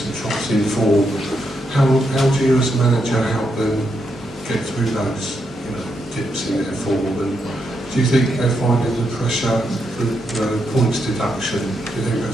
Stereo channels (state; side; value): normal; both; correlation 0.81